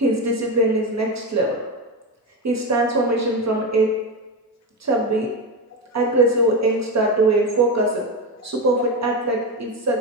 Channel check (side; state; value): both; normal; correlation 0.16